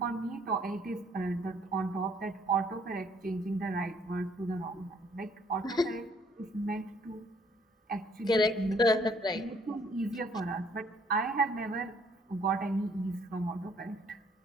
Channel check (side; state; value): both; normal; correlation 0.63